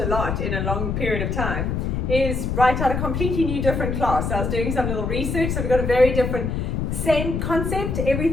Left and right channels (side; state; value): left; noise; rumble, 1 dB below the sound